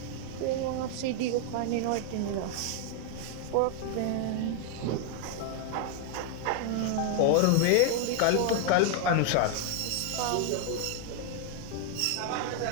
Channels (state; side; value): different; both; correlation 0.00